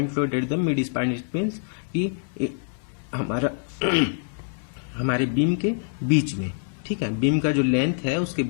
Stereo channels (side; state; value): right; silent; 62 dB below the other